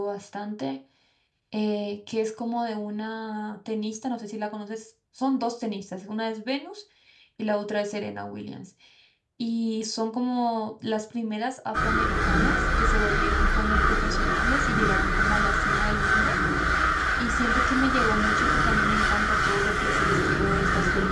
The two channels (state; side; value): identical; both; correlation 1.00